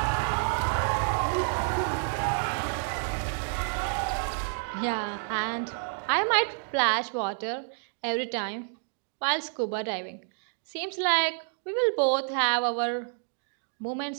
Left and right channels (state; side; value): silent; left; 57 dB below the other